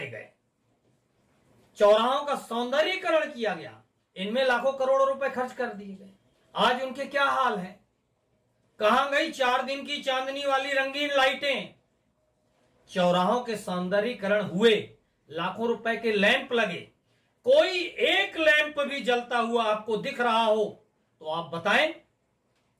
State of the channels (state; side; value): identical; both; correlation 1.00